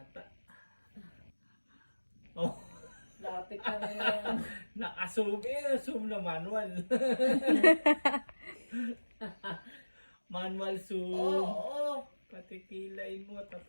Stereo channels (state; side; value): inverted; both; correlation -1.00